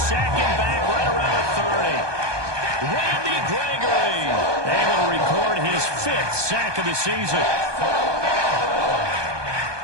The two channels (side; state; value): left; late; 1.2 ms